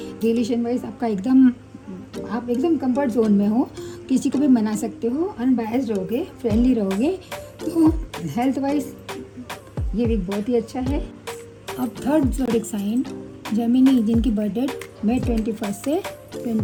रिलेशन वाइज आपका आप एकदम कंफर्ट जोन में हो, किसी को भी मना सकते हो, अनबायस्ड रहोगे, फ्रेंडली रहोगे। तो हेल्थ वाइज ये वीक बहुत ही अच्छा है। अब थर्ड ज़ोडिएक साइन जेमिनी, जिनकी बर्थ डेट मई 21 से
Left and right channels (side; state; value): both; identical; correlation 1.00